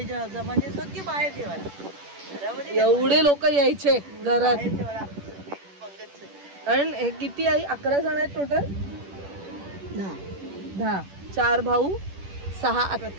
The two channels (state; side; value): late; left; 10 ms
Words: जमाने सगळे बाहेर जेवायला. एवढे लोक यायचे घरात. कारण हे किती आहे 11 जण आहेत टोटल. 10 4 भाऊ 6